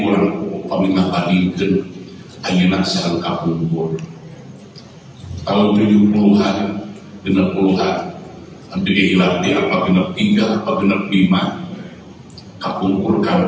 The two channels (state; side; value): identical; both; correlation 1.00